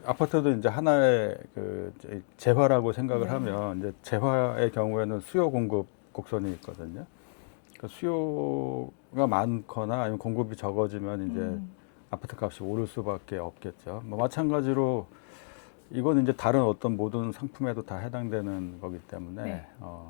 아파트도 이제 하나의 그 재화라고 생각을 네, 하면 이제 재화의 경우에는 수요 공급 곡선이 있거든요. 그 수요가 많거나 아니면 공급이 적어지면 이제 음, 아파트 값이 오를 수밖에 없겠죠. 뭐 마찬가지로 이건 이제 다른 어떤 모든 상품에도 다 해당되는 거기 때문에 네,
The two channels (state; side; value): silent; right; digital silence